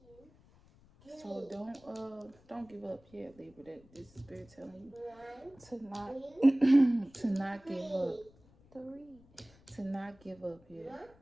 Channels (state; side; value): noise; left; rumble, 27 dB below the sound